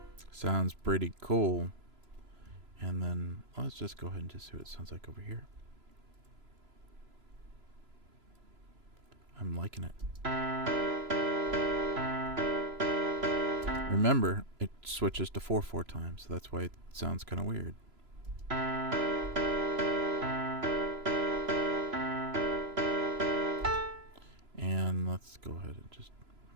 Sounds pretty cool. And then let's just go ahead and just see what it sounds like over here. I'm liking it. Remember, it switches to 4/4 times, so that's why it sounds kind of weird. And let's go ahead and just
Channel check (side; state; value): left; late; 3.0 ms